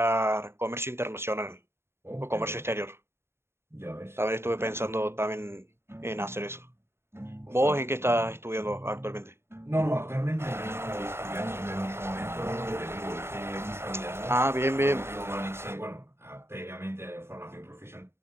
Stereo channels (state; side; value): late; left; 0.12 ms